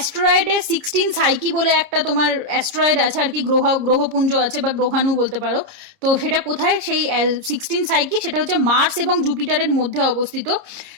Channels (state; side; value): late; left; 30 ms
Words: 16 সাইকি বলে একটা তোমার অ্যাস্ট্রয়েড আছে আর কি, গ্রহপুঞ্জ আছে বা গ্রহাণু বলতে পারো। তো সেটা কোথায়, সেই 16 সাইকি, সেটা হচ্ছে মার্স এবং জুপিটারের মধ্যে অবস্থিত,